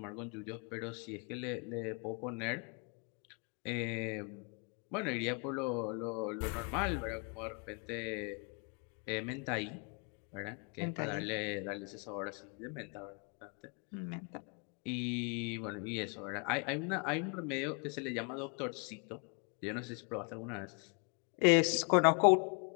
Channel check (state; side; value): quieter; right; 36.9 dB